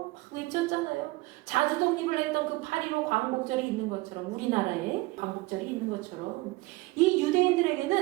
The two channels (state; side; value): quieter; left; 21.6 dB